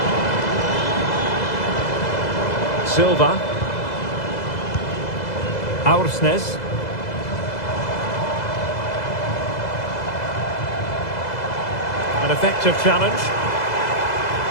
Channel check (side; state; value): right; late; 2.0 ms